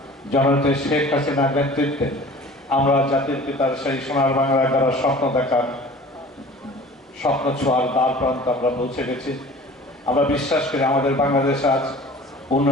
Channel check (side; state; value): both; normal; correlation 0.44